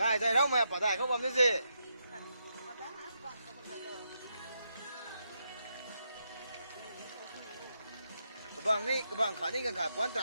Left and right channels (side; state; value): both; inverted; correlation -0.81